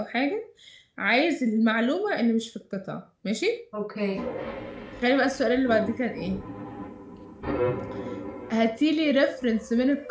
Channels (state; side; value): identical; both; correlation 1.00